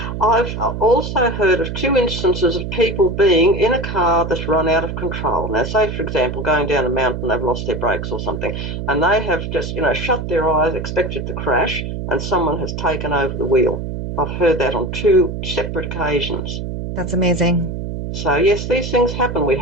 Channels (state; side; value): noise; right; hum, 5 dB below the sound